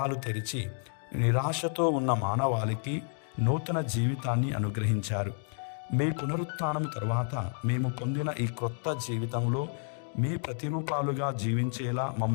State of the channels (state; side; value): silent; right; 57 dB below the other